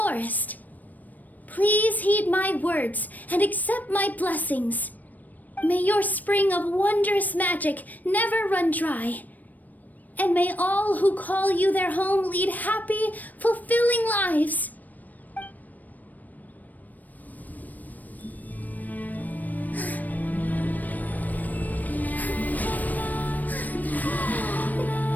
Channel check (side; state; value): right; late; 0.083 ms